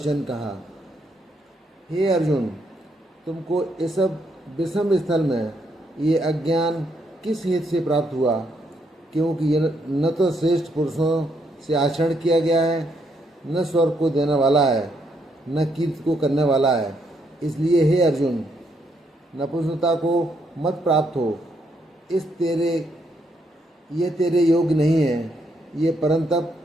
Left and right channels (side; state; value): both; normal; correlation 0.75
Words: कहा, हे अर्जुन, तुमको इस सब विषम स्थल में ये अज्ञान किस हेतु से प्राप्त हुआ? क्योंकि यह न तो श्रेष्ठ पुरुषों से आचरण किया गया है, न स्वर्ग को देने वाला है, न कीर्ति को करने वाला है। इसलिए हे अर्जुन, नपुंसकता को मत प्राप्त हो। ये तेरे योग्य नहीं है। ये परंतप